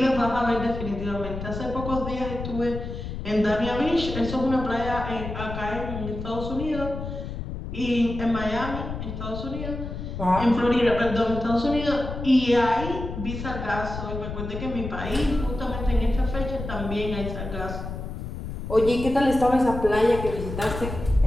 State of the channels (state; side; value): noise; left; rumble, 7 dB below the sound